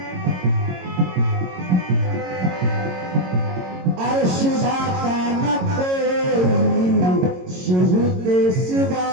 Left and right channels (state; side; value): late; left; 22 ms